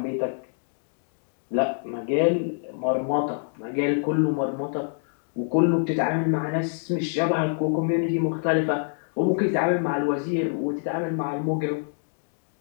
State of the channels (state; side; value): silent; right; 61 dB below the other